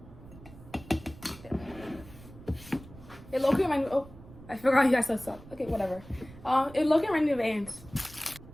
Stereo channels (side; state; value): right; noise; rumble, 18 dB below the sound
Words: It low-key reminded me. Oh, I forgot you guys said stuff. Okay, whatever. It low-key reminded me of ants.